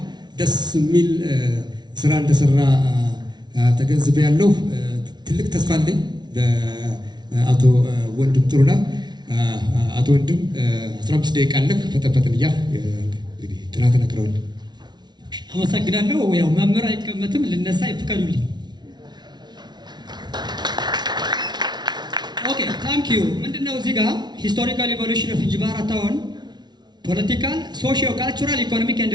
ደስ የሚል ስራ እንደሰራ ተገንዝቤያለሁ። ትልቅ ተስፋ አለኝ ለአቶ ወንድም ጥሩነህ። አቶ ወንድም 15 ደቂቃ አለህ። ፈጠን እያልህ እንግዲህ ጥናት ነግረውል። አመሰግናለሁ። ያው መምህር አይቀመጥም፣ ልነሳ ይፍቀዱልኝ። ኦኬ ታንክ ዩ። ምንድነው እዚህ ጋር ሂስቶሪካል ኢቮሉሽን ኦፍ እንጅባራ ታውን ፖለቲካል ሶሺዮ ካልቸራል ኢኮኖሚክ ኤንድ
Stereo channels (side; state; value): left; late; 0.20 ms